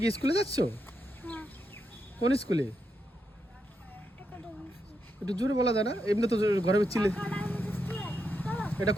কি স্কুলে যাচ্ছ? কোন স্কুলে? একটু জোরে বলা যায় না? এমনি তো ঘরে চিলে। এটা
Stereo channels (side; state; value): both; normal; correlation 0.83